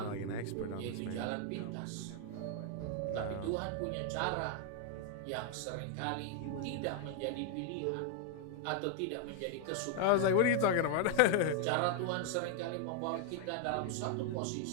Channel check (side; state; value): both; different; correlation 0.00